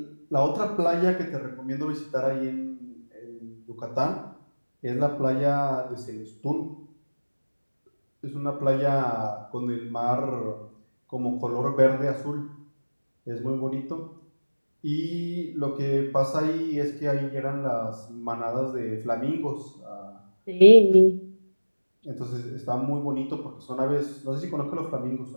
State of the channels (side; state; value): both; inverted; correlation -1.00